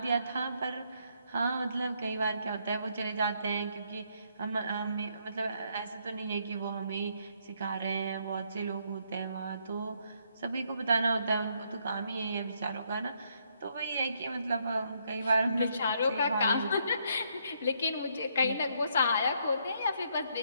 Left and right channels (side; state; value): both; inverted; correlation -0.72